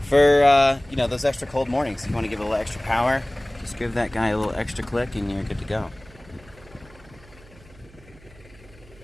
for you know, those extra cold mornings. If you want to give it a little extra power, just give that guy a little extra click and you're good to go.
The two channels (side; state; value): right; noise; hum, 24 dB below the sound